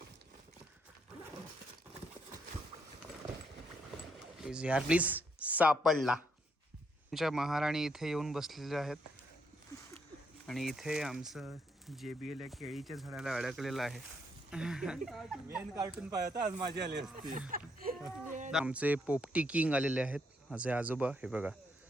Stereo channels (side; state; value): both; normal; correlation 0.74